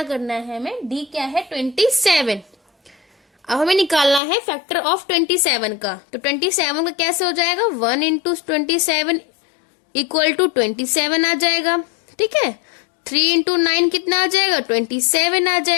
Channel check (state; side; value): drops out; right; at 4.2 s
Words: करना है हमें, डी क्या है 27। अब हमें निकालना है फैक्टर ऑफ 27 का। तो 27 का कैसे हो जाएगा, 1 इंटू 27 इक्वल टू 27 आ जाएगा। ठीक है, 3 इंटू 9 कितना आ जाएगा, 27 आ